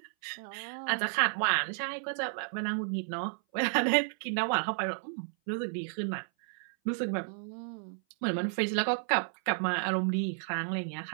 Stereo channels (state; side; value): silent; left; 56 dB below the other